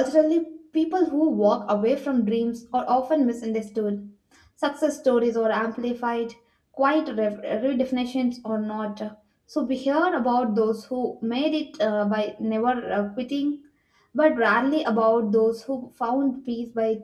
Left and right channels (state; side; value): identical; both; correlation 1.00